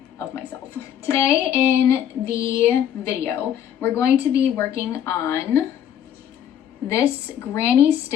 of myself. Today in the video, we're going to be working on this granny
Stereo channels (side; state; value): right; quieter; 9.8 dB